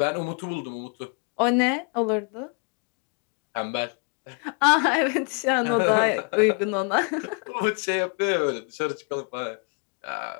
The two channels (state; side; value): quieter; right; 38.1 dB